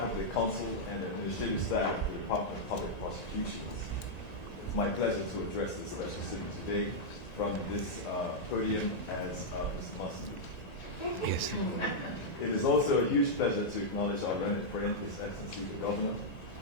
of the Council and Administrative Staff of the Department of Public Prosecutions, it's my pleasure to address this special sitting today from this podium as Mr. Mussenden. Yes. It is also a huge pleasure to acknowledge our learned friend, His Excellency the Governor,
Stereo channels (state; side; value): late; right; 1.9 ms